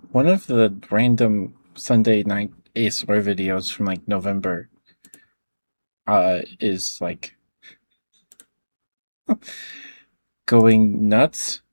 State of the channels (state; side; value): inverted; both; correlation -1.00